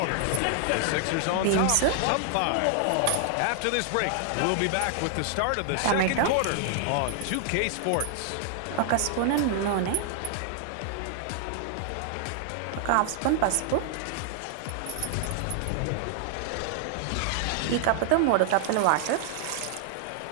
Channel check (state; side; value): different; both; correlation 0.00